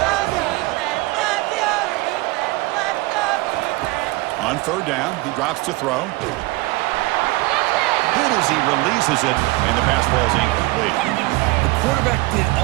On third down, he drops to throw. Hit as he releases it, and the pass falls incomplete. The quarterback did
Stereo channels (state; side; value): quieter; left; 21.7 dB